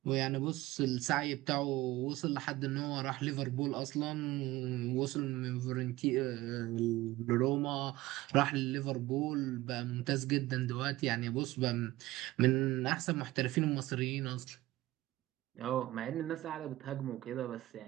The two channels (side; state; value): left; quieter; 17.7 dB